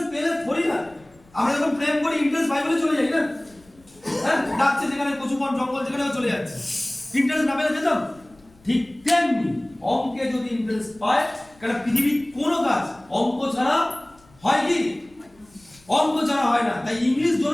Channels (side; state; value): left; noise; rumble, 29 dB below the sound